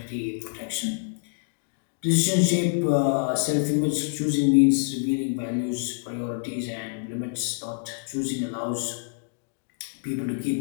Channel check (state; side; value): silent; right; digital silence